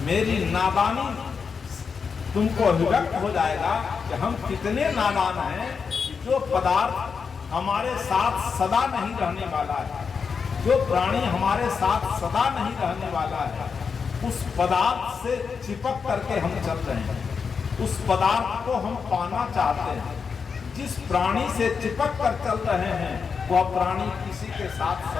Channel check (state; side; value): quieter; right; 5.8 dB